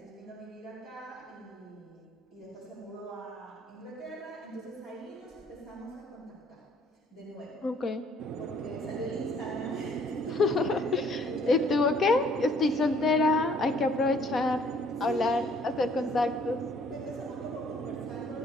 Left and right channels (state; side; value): normal; both; correlation 0.60